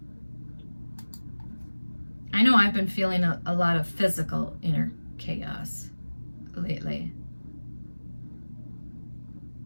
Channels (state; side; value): inverted; both; correlation -1.00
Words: I know I've been feeling a lot of physical inner chaos lately.